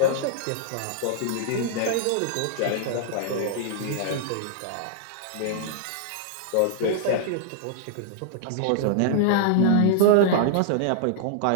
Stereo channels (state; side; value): different; both; correlation -0.01